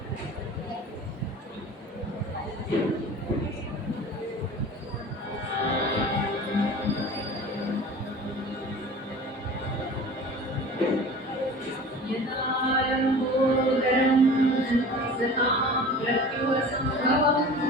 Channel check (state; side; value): normal; both; correlation 0.40